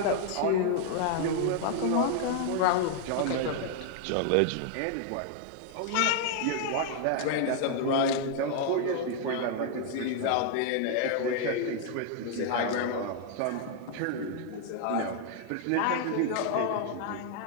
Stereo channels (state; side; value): different; both; correlation 0.00